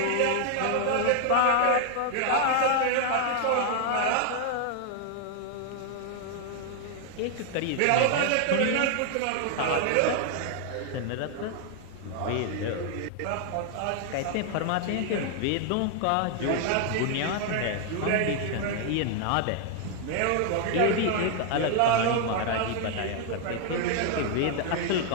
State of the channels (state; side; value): different; both; correlation 0.00